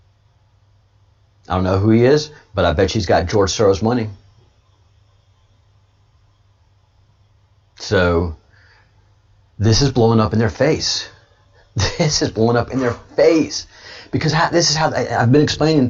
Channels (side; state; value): both; identical; correlation 1.00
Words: I don't know who he is, but I bet he's got George Soros money. So this is blowing up in their face. This is blowing up in their face. Because this is how I've been